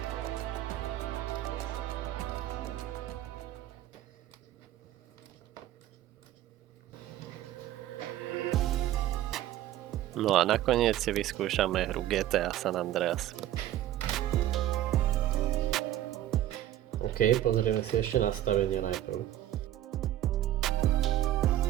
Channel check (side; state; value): left; quieter; 13.0 dB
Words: No a nakoniec si vyskúšame hru GTA San Andreas. OK, pozrieme si ešte nastavenia najprv.